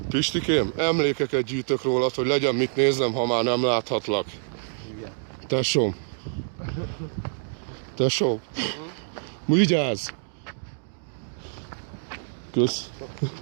Pistikém, emlékeket gyűjtök rólad, hogy legyen mit néznem, ha már nem láthatlak. Igen. Tesóm. Tesóm. Vigyázz! Kösz.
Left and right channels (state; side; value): silent; left; digital silence